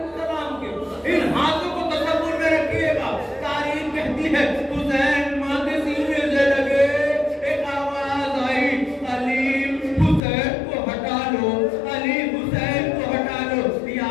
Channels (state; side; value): drops out; right; at 10.2 s